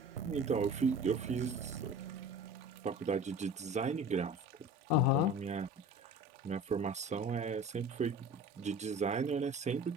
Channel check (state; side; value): normal; both; correlation 0.39